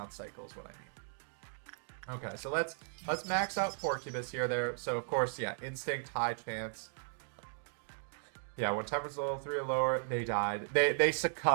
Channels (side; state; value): left; silent; digital silence